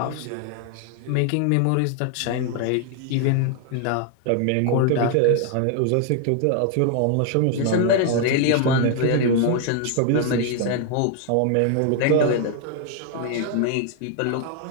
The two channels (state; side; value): different; both; correlation 0.00